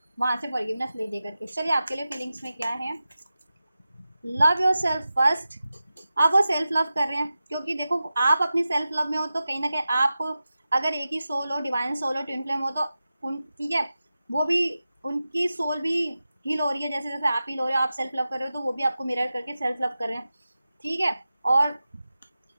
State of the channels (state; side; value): inverted; both; correlation -0.93